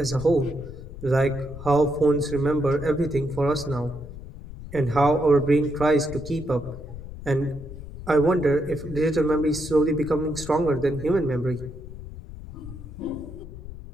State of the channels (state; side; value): noise; left; rumble, 13 dB below the sound